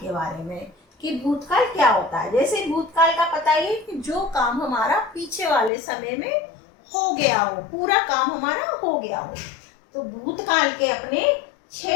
बारे में कि भूतकाल क्या होता है। जैसे भूतकाल का पता ही है कि जो काम हमारा पीछे वाले समय में हो गया हो, पूरा काम हमारा हो गया हो। तो भूतकाल के अपने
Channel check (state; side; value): drops out; right; at 5.7 s